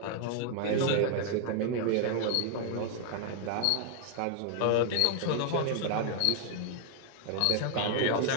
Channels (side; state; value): both; different; correlation 0.00